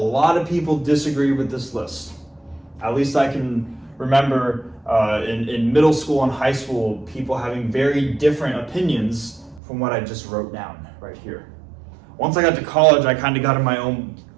of people disagree with this list. At least I can remember in middle school and high school, people having very different opinions from what I just wrote down right here. Once I got to college, I kind of got in my own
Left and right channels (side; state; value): left; drops out; at 9.6 s